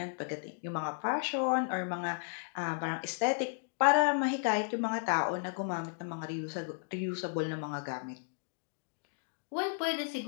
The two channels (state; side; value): silent; right; digital silence